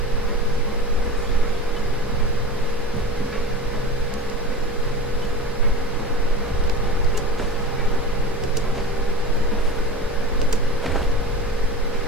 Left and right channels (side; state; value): both; normal; correlation 0.33